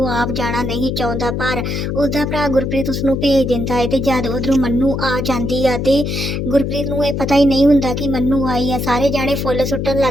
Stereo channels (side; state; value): left; noise; hum, 2 dB below the sound